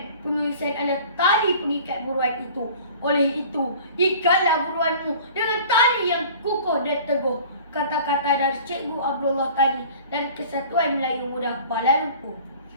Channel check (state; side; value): inverted; both; correlation -0.45